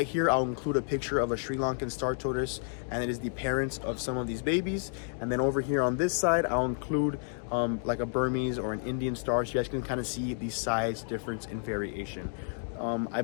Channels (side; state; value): right; silent; 57 dB below the other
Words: here, I'll include a picture of a Sri Lankan Star Tortoise, and it is the parents of some of these babies. And then over here on this side, I'll include like a Burmese or an Indian star, so you guys can kind of see the size difference and variation. I